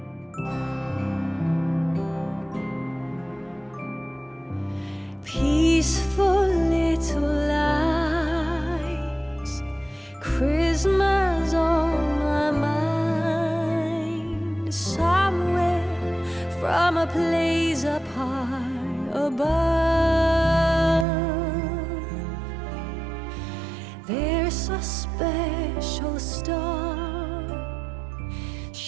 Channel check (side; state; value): left; drops out; at 21.1 s